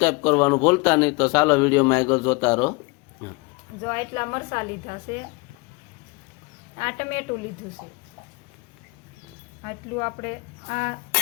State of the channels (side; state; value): right; quieter; 27.3 dB